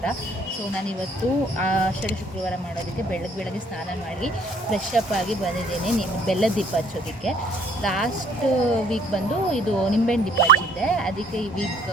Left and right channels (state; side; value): normal; both; correlation 0.60